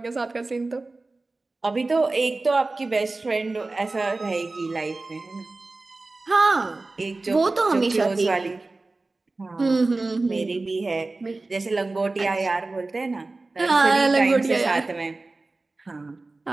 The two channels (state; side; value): quieter; left; 3.3 dB